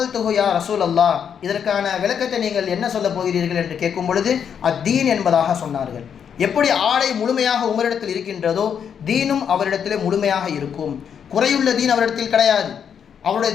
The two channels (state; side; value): quieter; right; 7.8 dB